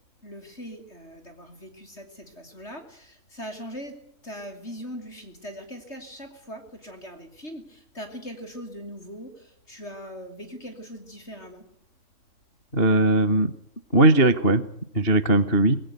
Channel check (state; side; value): late; right; 3.3 ms